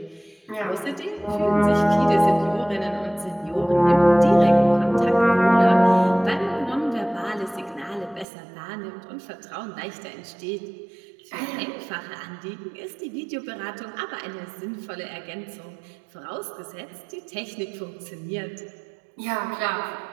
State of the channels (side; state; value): left; drops out; at 8.2 s